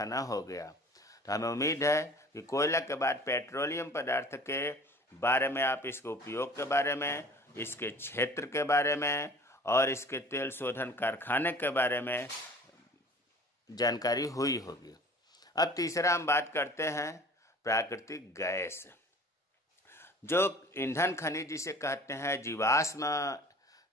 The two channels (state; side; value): normal; both; correlation 0.45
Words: हो गया। तो हमें उम्मीद है कि कोयला के बाद पेट्रोलियम पदार्थ के बारे में आप इसके उपयोग के बारे में, इसके क्षेत्र के बारे में और इसके तेल शोधन कारखाने के बारे में जानकारी हुई होगी। अब तीसरा हम बात करते हैं प्राकृतिक गैस। जो ईंधन खनिज जिसे कहते हैं